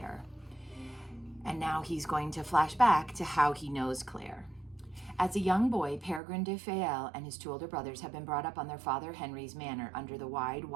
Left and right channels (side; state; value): left; drops out; at 6.2 s